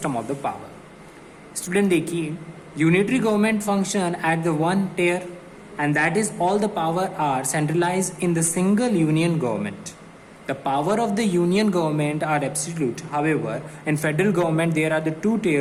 of the power. Student देखिए, unitary government function at the one tier and that is all the power are centralized in the single union government. The power of the union government are absolute. However, in federal government there are the two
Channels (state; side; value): identical; both; correlation 1.00